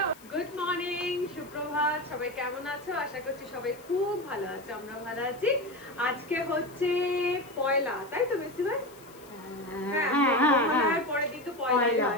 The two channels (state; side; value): noise; left; hiss, 24 dB below the sound